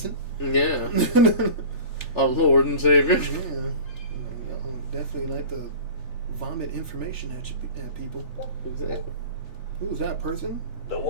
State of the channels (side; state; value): right; late; 3.4 ms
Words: Yeah. Our Lord and Savior. Yeah. Y'all definitely like to vomit information at, at people. Exactly. Who's that person? The